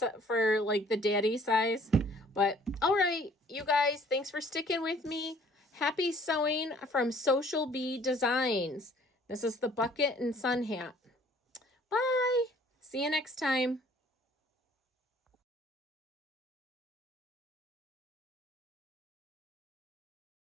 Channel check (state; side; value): normal; both; correlation 0.57